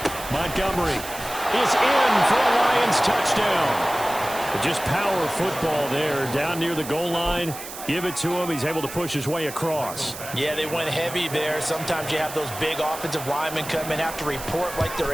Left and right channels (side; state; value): right; noise; hiss, 11 dB below the sound